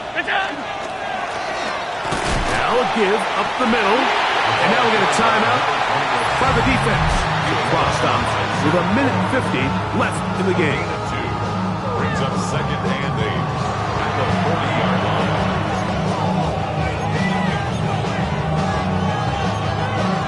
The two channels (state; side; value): identical; both; correlation 1.00